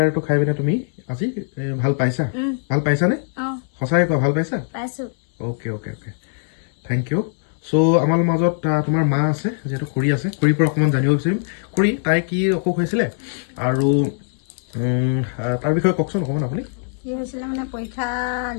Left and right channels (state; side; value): silent; right; digital silence